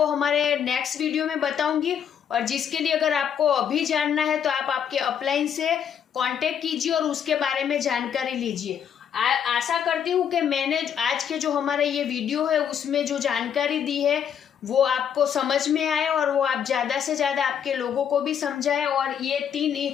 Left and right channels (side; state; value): right; quieter; 8.4 dB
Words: हमारे नेक्स्ट वीडियो में बताऊंगी। और जिसके लिए अगर आपको अभी जानना है तो आप आपके अपलाइन से कांटेक्ट कीजिए और उसके बारे में जानकारी लीजिए। आशा करती हूँ कि मैंने आज के जो हमारा ये वीडियो है उसमें जो जानकारी दी है वो आपको समझ में आए और वो आप ज़्यादा से ज़्यादा आपके लोगों को भी समझाए। और ये